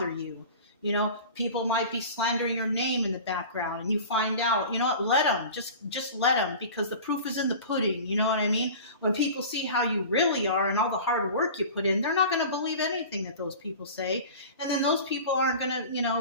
you. You know, people might be slandering your name in the background and you find out, you know what, let them, just let them, because the proof is in the pudding. You know what I mean? When people see how you really are and all the hard work you put in, they're not going to believe anything that those people say. And then those people aren't going to, you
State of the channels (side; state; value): both; inverted; correlation -0.37